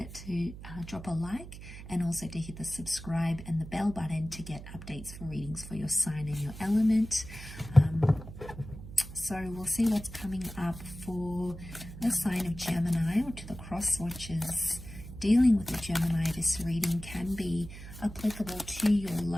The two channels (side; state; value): right; noise; hum, 13 dB below the sound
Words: to drop a like and also to hit the subscribe and the bell button to get updates for readings for your sign and your element. So we'll see what's coming up for the sign of Gemini, or to the cross watchers dealing with the Gemini. This reading can be applicable to your